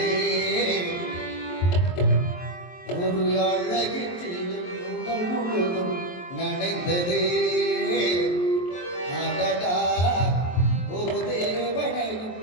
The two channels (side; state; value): right; late; 23 ms